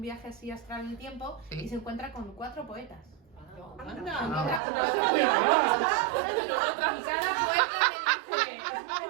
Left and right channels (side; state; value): left; drops out; at 4.6 s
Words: viaje así astral en el tiempo Sí. y se encuentra con 4 poetas. Anda. Y cada poeta le dice, es muy